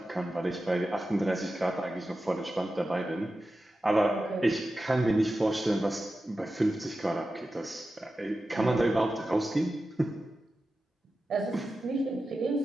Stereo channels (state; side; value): normal; both; correlation 0.93